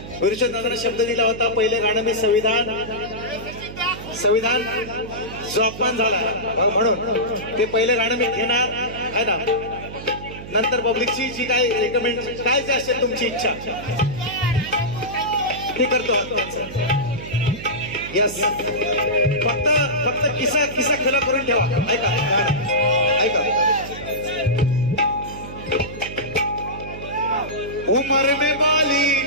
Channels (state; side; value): noise; right; hum, 12 dB below the sound